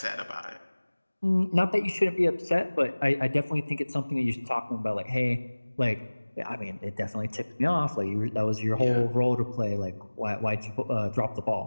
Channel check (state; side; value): inverted; both; correlation -1.00